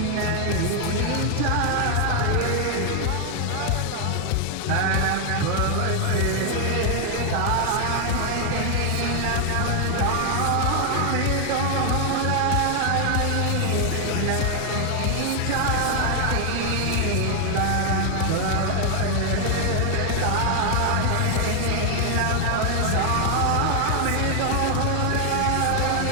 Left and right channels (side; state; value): both; different; correlation 0.00